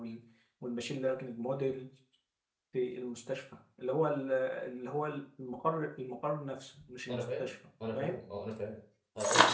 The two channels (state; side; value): identical; both; correlation 1.00